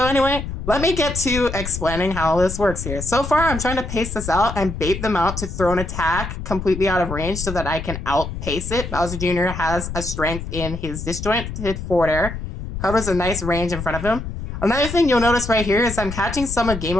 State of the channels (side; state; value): left; noise; rumble, 7 dB below the sound